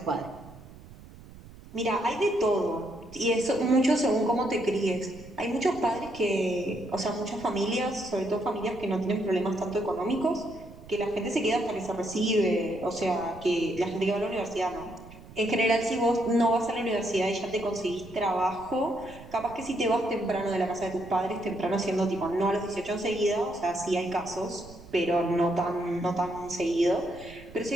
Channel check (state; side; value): noise; right; rumble, 19 dB below the sound